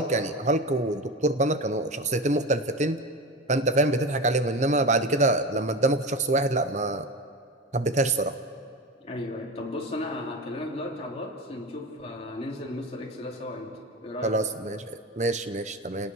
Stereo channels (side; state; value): both; normal; correlation 0.25